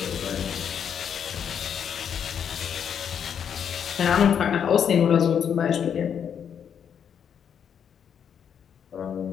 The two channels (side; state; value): right; quieter; 8.0 dB